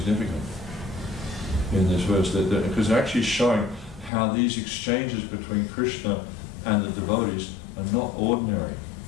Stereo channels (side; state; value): right; drops out; at 4.1 s